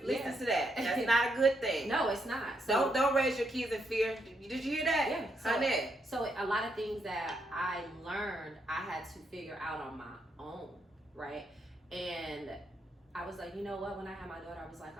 Listen to that. That's not a good thing. No, it's not. So, don't raise your kids in fear. Did you hear that? Yeah. So a lot of things that I learned, I had to figure out on my own, right? And I was like, you know what? When I had my daughter, I was like,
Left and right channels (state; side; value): normal; both; correlation 0.79